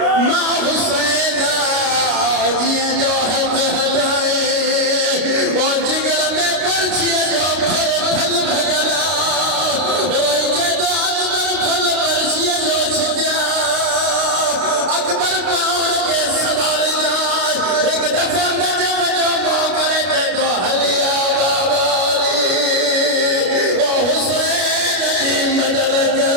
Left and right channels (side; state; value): left; late; 33 ms